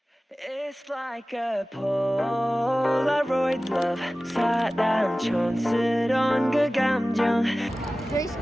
It's like a Polaroid love 사랑촌스러운 그 감정 There's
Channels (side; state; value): both; normal; correlation 0.97